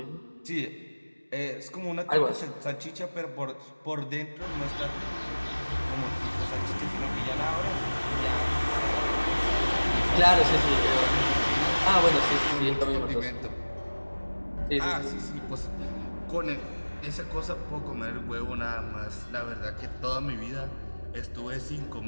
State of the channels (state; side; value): inverted; both; correlation -1.00